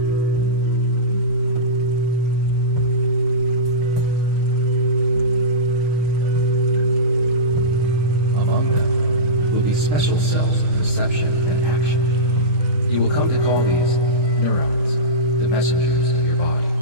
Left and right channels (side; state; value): left; late; 6.4 ms